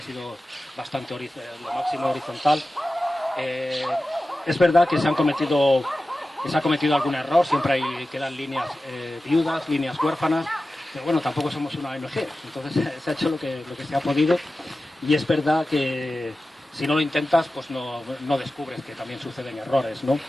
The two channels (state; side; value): normal; both; correlation 0.94